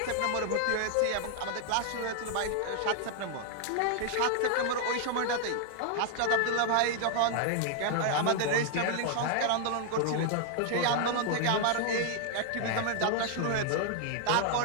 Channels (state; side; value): different; both; correlation 0.00